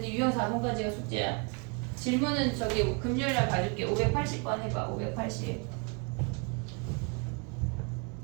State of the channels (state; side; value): quieter; left; 33.6 dB